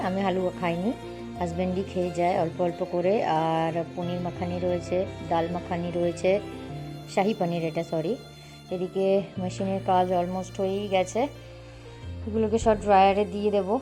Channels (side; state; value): both; identical; correlation 1.00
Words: আমি হালুয়া খাইনি, হাজব্যান্ডই খেয়ে যায় অল্প অল্প করে। আর পনির মাখানি রয়েছে, ডাল মাখানি রয়েছে, শাহি পনির এটা, সরি। এদিকে মেশিনের কাজ অলমোস্ট হয়েই গেছে, এগুলোকে সব ড্রায়ারে দিয়ে দেবো।